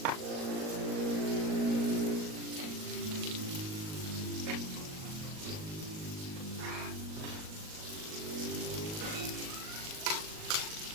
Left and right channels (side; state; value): left; late; 38 ms